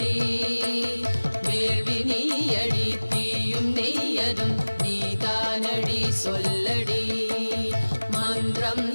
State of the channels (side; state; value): both; inverted; correlation -1.00